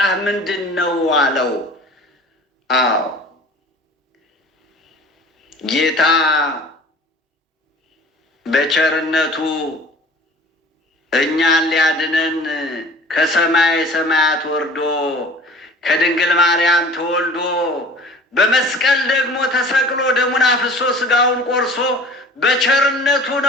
ምንድን ነው አለው። ጌታ በቸርነቱ እኛን ሊያድነን ከሰማይ ሰማያት ወርዶ ከድንግል ማርያም ተወልዶ በመስቀል ደግሞ ተሰቅሎ ደሙን አፍሶ ስጋውን ቆርሶ በቸርነቱ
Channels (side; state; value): both; normal; correlation 0.45